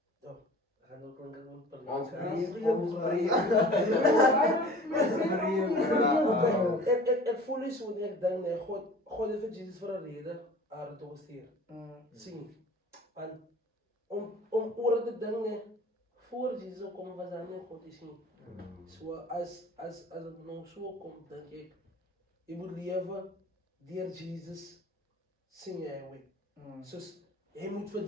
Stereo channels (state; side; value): normal; both; correlation 0.44